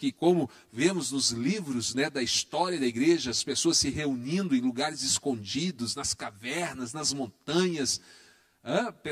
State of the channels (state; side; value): identical; both; correlation 1.00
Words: como vemos nos livros, né, da história da igreja, as pessoas se reunindo em lugares escondidos, nas cavernas, nas montanhas.